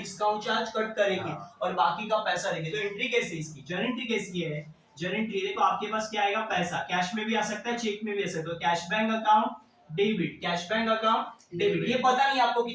चार्ज कट करेगी और बाकी का पैसा देगी। तो एंट्री कैसी इसकी? जर्नल एंट्री कैसी है? जर्नल एंट्री देखो आपके पास क्या आएगा? पैसा। कैश में भी आ सकता है, चेक में भी आ सकता है। Cash bank account debit, cash bank account debit. ये पता नहीं आपको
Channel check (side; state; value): both; identical; correlation 1.00